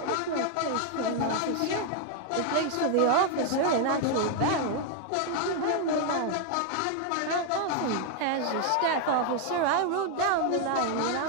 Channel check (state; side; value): different; both; correlation 0.01